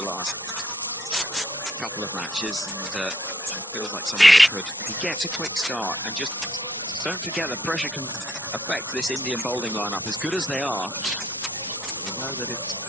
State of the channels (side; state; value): both; normal; correlation 0.68